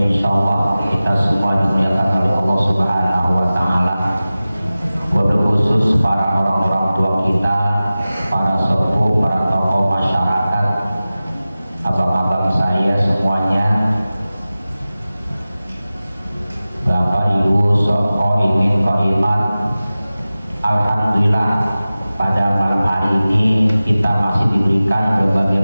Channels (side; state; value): both; inverted; correlation -0.96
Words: insyaallah kita semua dimuliakan oleh Allah Subhanahu wa taala. Wabil khusus para orang-orang tua kita, para sepuh, para tokoh masyarakat, abang-abang saya semuanya, Bapak Ibu Soko Imin Koimat. Alhamdulillah pada malam hari ini kita masih diberikan berbagai